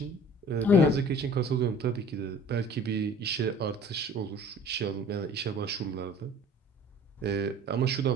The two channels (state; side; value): normal; both; correlation 0.47